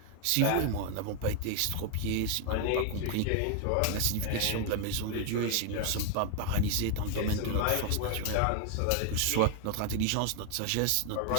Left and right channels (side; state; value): both; different; correlation 0.00